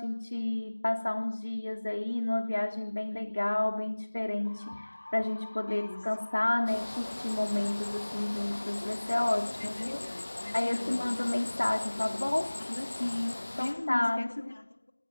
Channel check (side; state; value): both; inverted; correlation -1.00